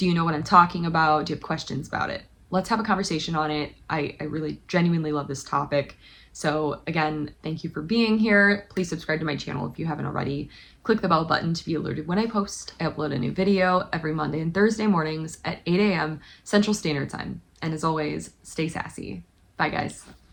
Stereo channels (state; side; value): identical; both; correlation 1.00